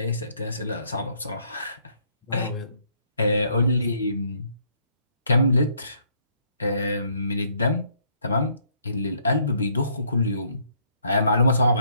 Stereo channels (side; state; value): both; inverted; correlation -0.68